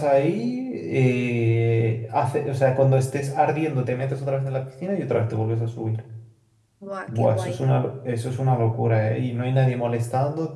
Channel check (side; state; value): both; identical; correlation 1.00